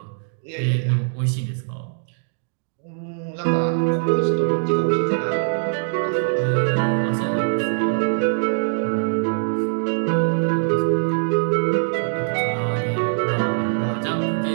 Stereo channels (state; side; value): silent; left; digital silence